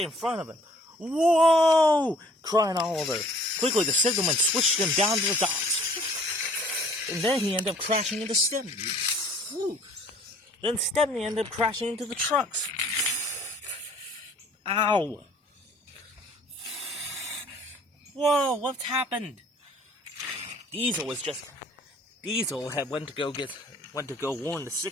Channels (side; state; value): both; normal; correlation 0.55